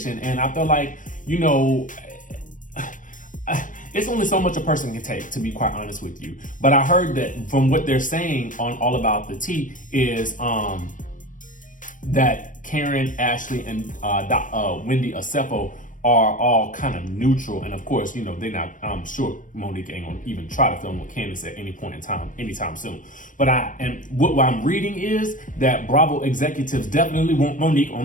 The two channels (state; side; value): late; right; 0.38 ms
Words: and I feel like, you know, it's only so much a person can take, to be quite honest with you. But I heard that from what they're saying on All About the Tea is that Karen, Ashley, and Wendy Osefo are all kind of neutral, and of course, you know, they're not. I'm sure Monique ain't gonna even try to film with Candiace at any point in time, anytime soon. But what I'm reading is that Bravo executives definitely want Monique